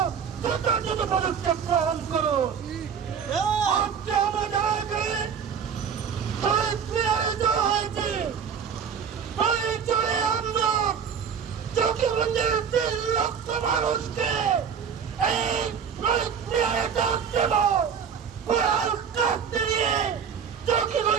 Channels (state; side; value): quieter; left; 7.2 dB